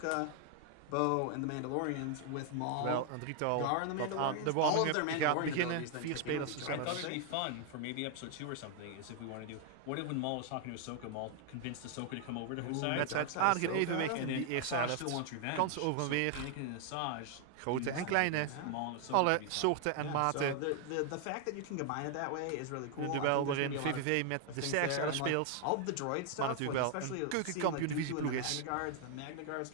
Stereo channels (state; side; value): different; both; correlation 0.00